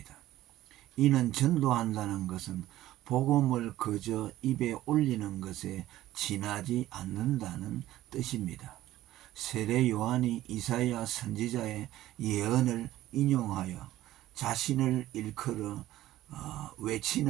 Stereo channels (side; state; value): left; quieter; 14.8 dB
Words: 이는 전도한다는 것은 복음을 그저 입에 올리는 것에 지나지 않는다는 뜻입니다. 세례 요한이 이사야 선지자의 예언을 인용하여 자신을 일컬어